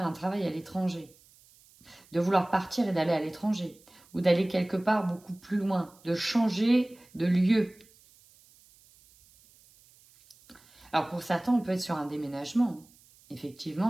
un travail à l'étranger. De vouloir partir et d'aller à l'étranger. Ou d'aller quelque part beaucoup plus loin. De changer de lieu. Alors, pour certains, on peut être sur un déménagement.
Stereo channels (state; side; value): noise; right; hiss, 28 dB below the sound